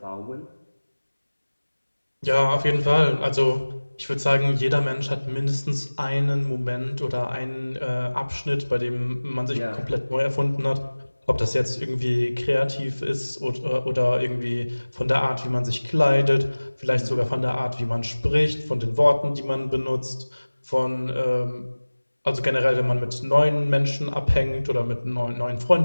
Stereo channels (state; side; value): inverted; both; correlation -1.00